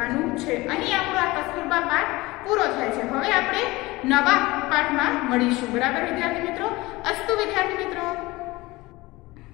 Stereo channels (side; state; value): right; quieter; 20.9 dB